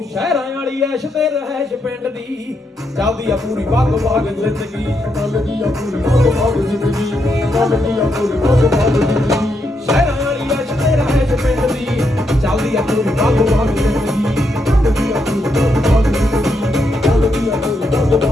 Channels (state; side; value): normal; both; correlation 0.80